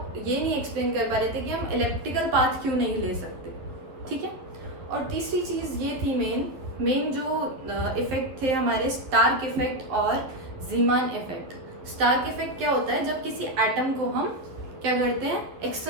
ये नहीं एक्सप्लेन कर पा रहे थे कि हम इलेक्ट्रिकल पाथ क्यों नहीं ले सकते, ठीक है। और तीसरी चीज़ ये थी मेन जो इफेक्ट थे हमारे, स्टार्क इफेक्ट और जीमान इफेक्ट। स्टार्क इफेक्ट क्या होता है, जब किसी एटम को हम क्या करते हैं,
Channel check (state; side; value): late; left; 11 ms